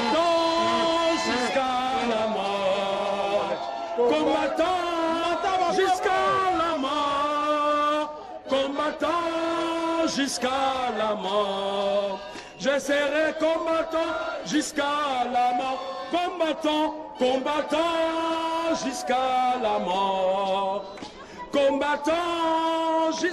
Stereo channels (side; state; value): both; identical; correlation 1.00